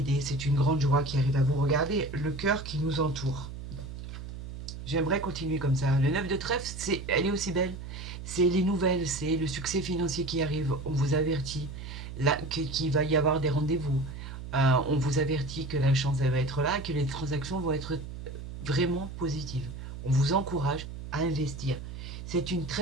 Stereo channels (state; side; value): noise; right; hum, 10 dB below the sound